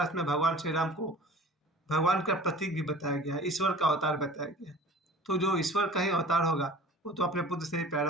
में भगवान श्री राम को भगवान का प्रतीक भी बताया गया है, ईश्वर का अवतार बताया गया है। तो जो ईश्वर का ही अवतार होगा वो तो अपने पुत्र से ही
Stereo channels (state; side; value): normal; both; correlation 0.43